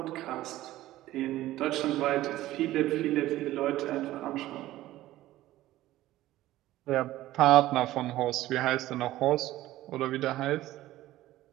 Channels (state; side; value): quieter; left; 15.5 dB